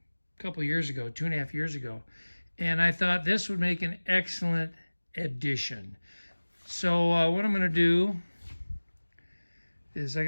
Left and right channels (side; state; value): both; inverted; correlation -1.00